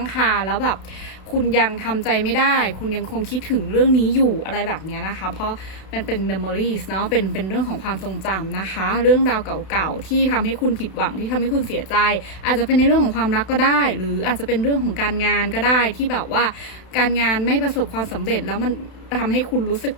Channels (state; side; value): late; right; 32 ms